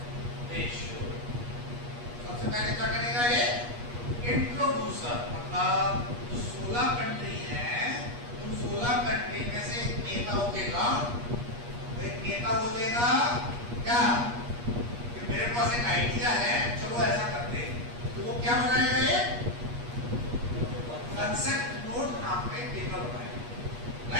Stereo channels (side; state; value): left; late; 8.4 ms